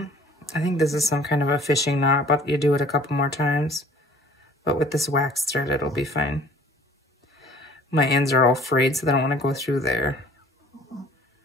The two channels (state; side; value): normal; both; correlation 0.51